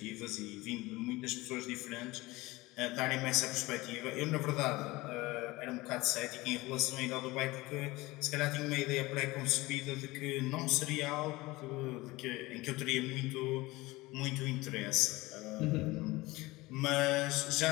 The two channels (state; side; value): quieter; right; 20.7 dB